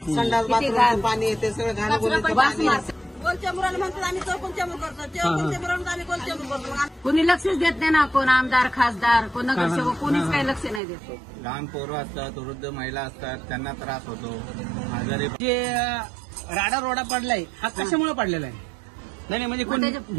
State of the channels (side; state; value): left; drops out; at 10.8 s